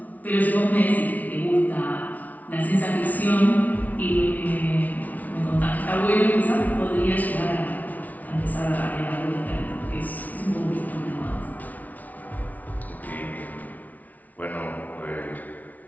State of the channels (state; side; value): late; right; 0.074 ms